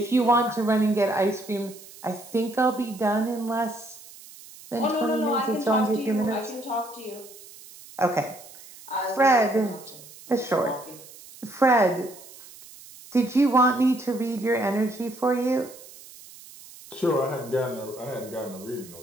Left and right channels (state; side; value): noise; right; hiss, 19 dB below the sound